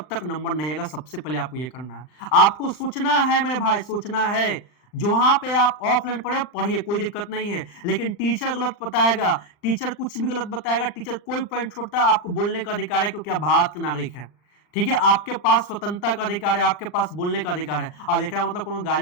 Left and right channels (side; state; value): right; late; 39 ms